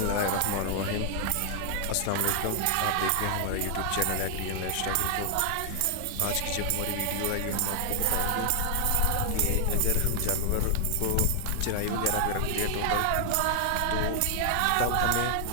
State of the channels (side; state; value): both; different; correlation 0.00